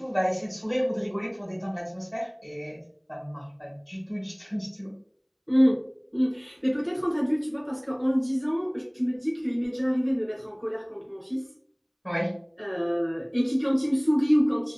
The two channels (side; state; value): both; identical; correlation 1.00